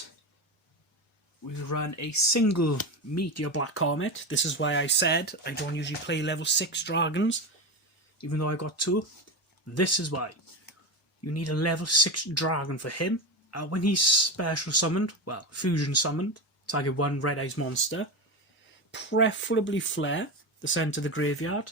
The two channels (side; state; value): both; normal; correlation 0.18